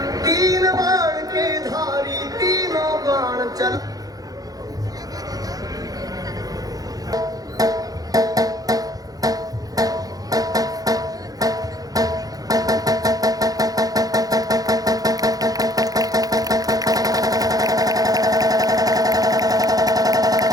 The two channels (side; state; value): left; late; 0.18 ms